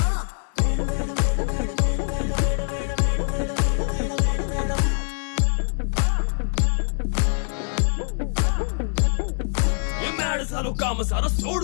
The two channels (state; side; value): silent; right; 62 dB below the other